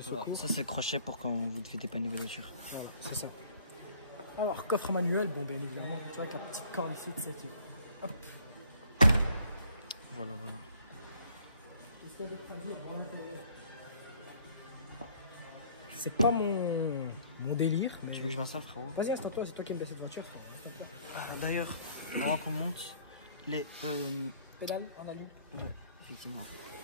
secours. Voilà, ça c'est le crochet pour quand vous devez dépanner vos voitures. Voilà, c'est ça. Alors, coffre manuel, bon, bien évidemment, tu vois, avec la petite corde ici de cette. Hop. Voilà. Qu'est-ce qu'il y a d'autre à dire pour l'intérieur? C'est pas mon délire. Tu veux que je vois ça, frérot? Vas-y, installe-toi, c'est toi qui aimes bien cette voiture. D'ailleurs, avant qu'on monte, les pédales en alu. Ouais, effectivement.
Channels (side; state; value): both; inverted; correlation -0.57